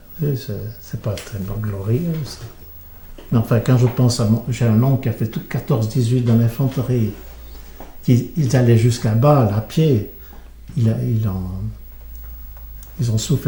C'est pas très glorieux. Mais enfin, quand je pense à j'ai un oncle qui a fait tout 14-18 dans l'infanterie. Ils allaient jusqu'à Bâle à pied. Ils ont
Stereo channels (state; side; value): identical; both; correlation 1.00